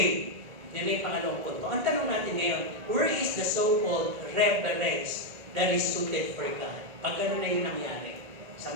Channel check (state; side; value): late; left; 1.9 ms